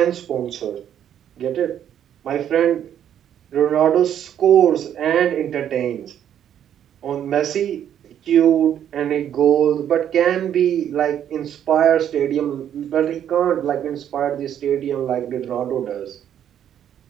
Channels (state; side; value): quieter; left; 9.9 dB